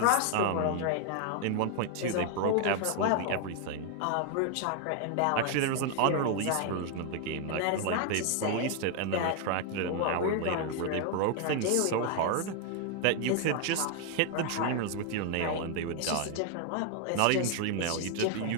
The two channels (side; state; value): both; different; correlation 0.00